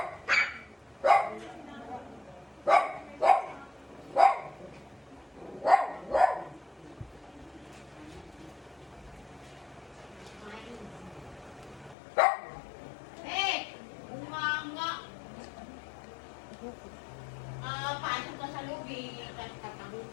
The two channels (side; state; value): right; drops out; at 12.0 s